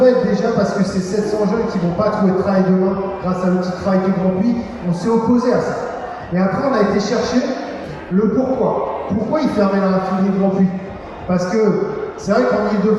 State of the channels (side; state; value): both; identical; correlation 1.00